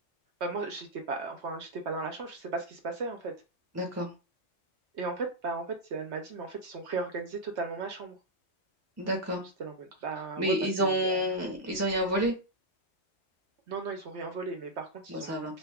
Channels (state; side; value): normal; both; correlation -0.03